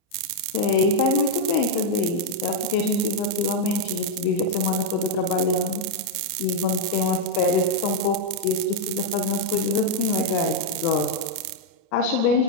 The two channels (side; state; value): right; late; 29 ms